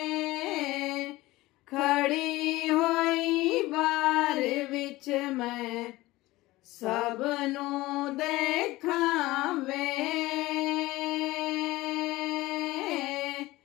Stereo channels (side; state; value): right; quieter; 18.9 dB